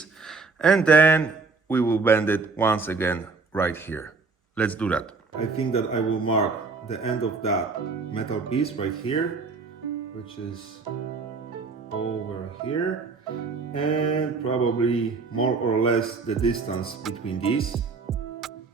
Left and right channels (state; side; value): quieter; left; 4.3 dB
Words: and then we will bend it once again right here. Let's do that. I think that I will mark the end of that metal piece right here, which is over here, and probably more or less the distance between these,